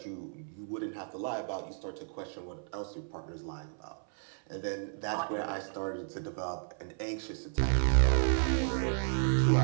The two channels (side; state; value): left; silent; 55 dB below the other